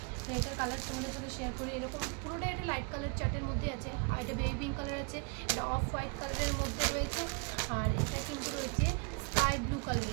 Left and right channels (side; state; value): left; quieter; 34.0 dB